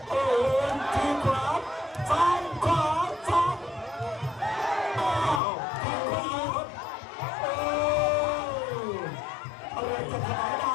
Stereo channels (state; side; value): drops out; right; at 5.4 s